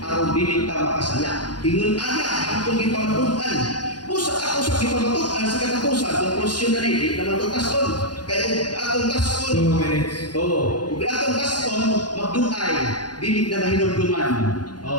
dili ta makasala. Ingon ana, ang ipamatuan. Usa ako sa gipamatuan sa katapusan, konklusyon na rin, naman itong taskon. Kaya atong taskon, 2 minutes. kung atong taskon, magdungay, dinig na mahinumduman.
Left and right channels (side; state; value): right; late; 0.70 ms